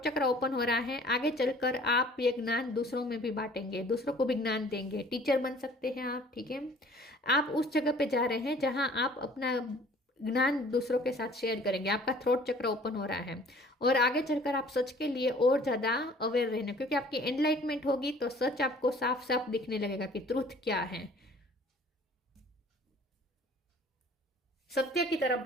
चक्र ओपन हो रहा है, आगे चलकर आप ये ज्ञान दूसरों में भी बांटेंगे, दूसरों को भी ज्ञान देंगे, टीचर बन सकते हैं आप, ठीक है। आप उस जगह पे जा रहे हैं जहाँ आप अपना ज्ञान दूसरों के साथ शेयर करेंगे, आपका थ्रोट चक्र ओपन हो रहा है, और आगे चलकर आप सच के लिए और ज़्यादा अवेयर रहने, क्योंकि आपकी एनलाइटमेंट होगी तो सच आपको साफ साफ दिखने लगेगा कि ट्रूथ क्या है, सत्य की तरफ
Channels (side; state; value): both; normal; correlation 0.52